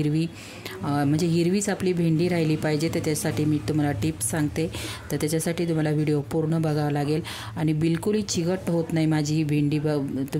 म्हणजे हिरवीच आपली भेंडी राहिली पाहिजे। तर त्यासाठी मी तुम्हाला टिप्स सांगते, तर त्याच्यासाठी तुम्हाला व्हिडिओ पूर्ण बघावा लागेल। आणि बिलकुलही चिकट होत नाही माझी ही भेंडी,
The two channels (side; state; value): both; identical; correlation 1.00